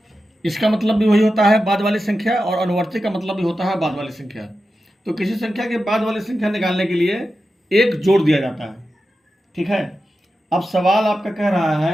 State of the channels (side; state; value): both; normal; correlation 0.91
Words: इसका मतलब भी वही होता है, बाद वाली संख्या, और अनुवर्ती का मतलब भी होता है बाद वाली संख्या। तो किसी संख्या के बाद वाली संख्या निकालने के लिए 1 जोड़ दिया जाता है। ठीक है, अब सवाल आपका कह रहा